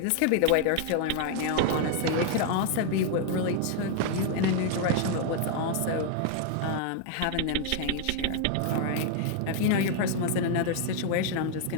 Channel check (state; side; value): different; both; correlation 0.00